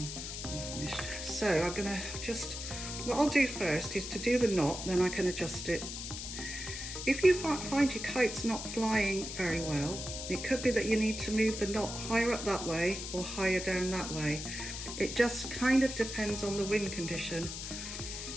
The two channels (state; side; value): noise; left; hiss, 7 dB below the sound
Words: when I'm finished. So I'm going to just, what I'll do first is to do the knot, then I can adjust it. If you find your kite's not flying very well, it could be that you need to move the knot higher up that way or higher down that way. It just kind of depends on the wind condition.